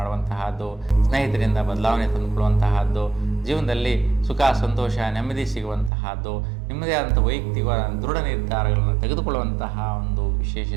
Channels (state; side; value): drops out; left; at 5.9 s